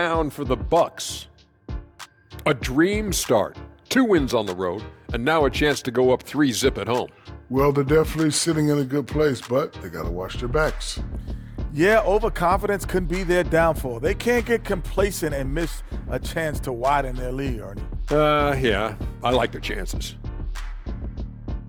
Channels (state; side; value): identical; both; correlation 1.00